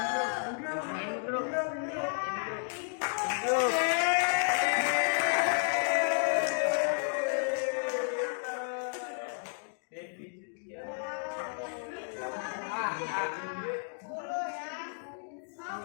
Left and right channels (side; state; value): right; silent; digital silence